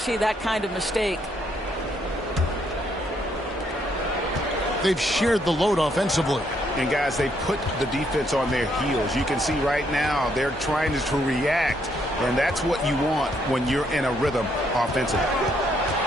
that kind of mistake. They've shared the load offensively. And guys, they put the defense on their heels. You can see right now they're trying to react, and that's what you want when you're in a rhythm offensively.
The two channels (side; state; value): both; normal; correlation 0.72